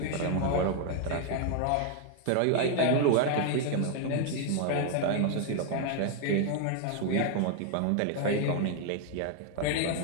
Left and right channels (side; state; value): both; different; correlation 0.00